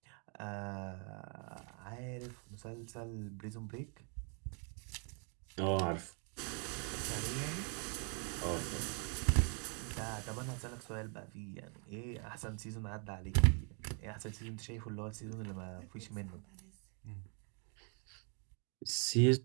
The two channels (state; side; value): quieter; left; 39.3 dB